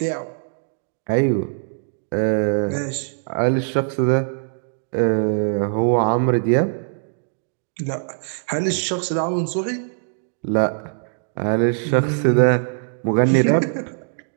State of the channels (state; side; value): silent; left; digital silence